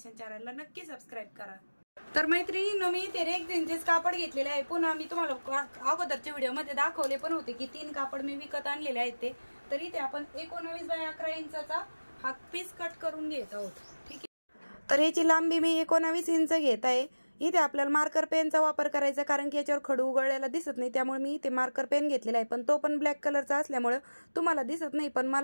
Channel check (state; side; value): inverted; both; correlation -1.00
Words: चॅनलला नक्की सबस्क्राईब करा। तर मैत्रिणींनो, मी ते रेक्झिनचेच कापड घेतलेले आहे। पुन्हा मी तुम्हाला अगोदरच्या व्हिडिओ मध्ये दाखवले पण होते की 3 कापड मी विकत आणलेले आहेत ते। तर इथे आपण 19x11 इंचाचा हा पीस कट करून घेत आहोत, ठीक आहे। तर याची लांबी मी 19 इंच घेत आहे। इथे आपल्याला मार्कर पेनचा वापर करायचा, कारण की याच्यावर खडू उघडलेला दिसत नाही, त्यामुळे मी इथे मार्कर पेन घेतलेला आहे, पण तो पण ब्लॅक कलरचा असल्यामुळे तुम्हाला दिसत नाही, पण